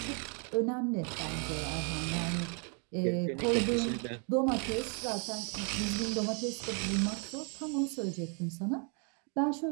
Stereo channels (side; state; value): left; quieter; 38.7 dB